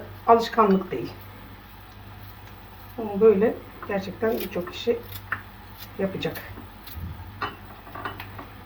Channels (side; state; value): both; identical; correlation 1.00